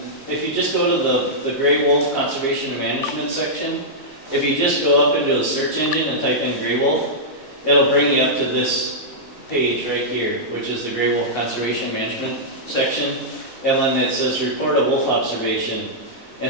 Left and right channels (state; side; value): late; right; 4.0 ms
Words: if you just go to the Gray Wolf Conservation and Management section, if you just go up into the search engine and type in Gray Wolf, it'll bring you up to this page right here, which is the Gray Wolf Conservation Management section. And then it says report a wolf observation.